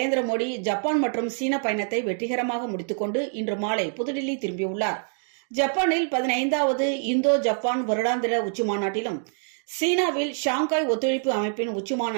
மோடி ஜப்பான் மற்றும் சீன பயணத்தை வெற்றிகரமாக முடித்துக்கொண்டு இன்று மாலை புதுடில்லி திரும்பியுள்ளார். ஜப்பானில் 15வது இந்தோ ஜப்பான் வருடாந்திர உச்சிமாநாட்டிலும் சீனாவில் ஷாங்காய் ஒத்துழைப்பு அமைப்பின்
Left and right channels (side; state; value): left; silent; 55 dB below the other